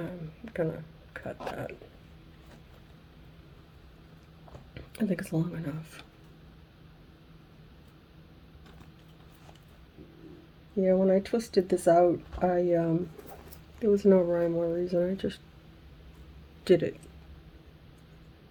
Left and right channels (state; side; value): identical; both; correlation 1.00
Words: gonna cut that. I think it's long enough. Yeah, when I twisted this out, there was no rhyme or reason. I just did it.